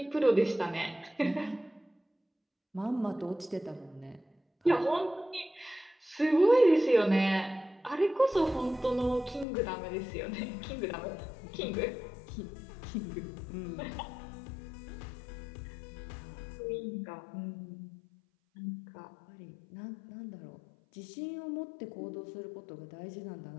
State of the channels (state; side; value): drops out; right; at 9.5 s